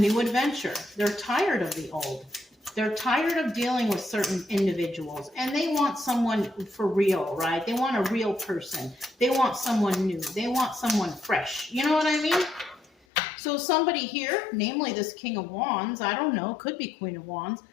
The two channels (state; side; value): drops out; right; at 12.9 s